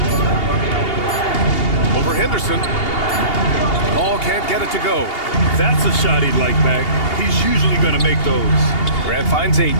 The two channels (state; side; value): late; right; 2.8 ms